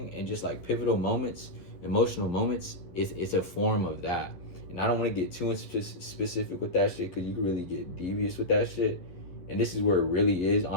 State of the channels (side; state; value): right; late; 11 ms